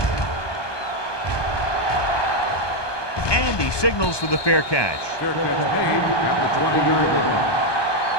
And he signals for the fair catch. Fair catch made at the 20-yard line.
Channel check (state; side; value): late; right; 1.2 ms